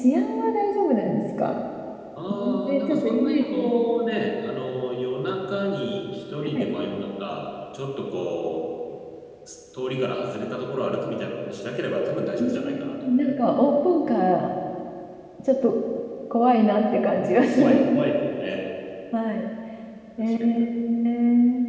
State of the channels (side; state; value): both; identical; correlation 1.00